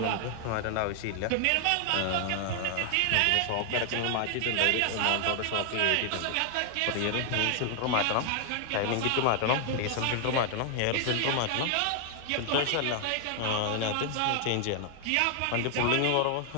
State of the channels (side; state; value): both; different; correlation 0.00